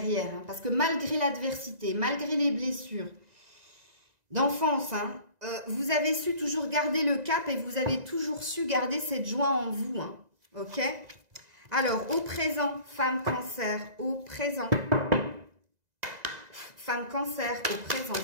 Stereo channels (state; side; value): late; left; 2.0 ms